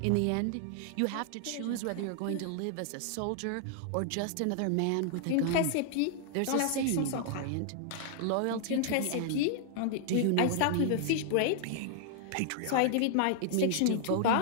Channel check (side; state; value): both; different; correlation 0.00